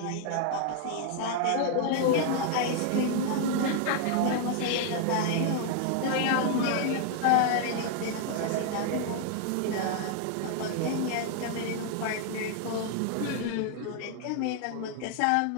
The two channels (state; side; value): different; both; correlation 0.00